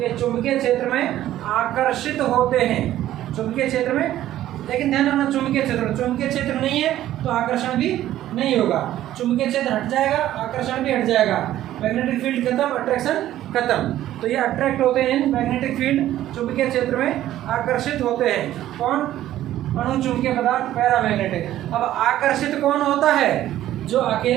ये चुंबकीय क्षेत्र में आकर्षित होते हैं, चुंबकीय क्षेत्र में। लेकिन ध्यान रखना, चुंबकीय क्षेत्र नहीं है तो आकर्षण भी नहीं होगा। चुंबकीय क्षेत्र हट जाएगा, आकर्षण भी हट जाएगा। मैग्नेटिक फील्ड खत्म, अट्रैक्शन खत्म। तो ये अट्रैक्ट होते हैं मैग्नेटिक फील्ड, चुंबकीय क्षेत्र में आकर्षित होते हैं। कौन, अणु चुंबकीय पदार्थ, पैरामैग्नेटिक। अब आकर्षित कौन होता है, जो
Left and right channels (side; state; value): left; quieter; 13.2 dB